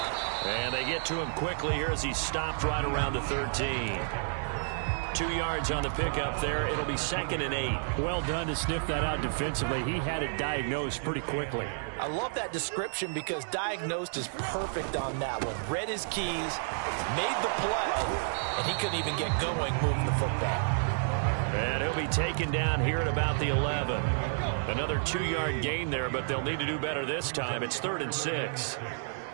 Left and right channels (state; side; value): silent; left; 57 dB below the other